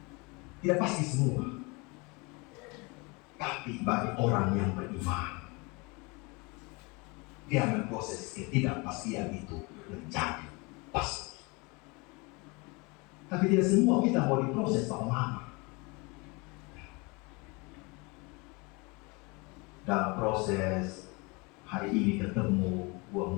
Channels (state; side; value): quieter; right; 27.9 dB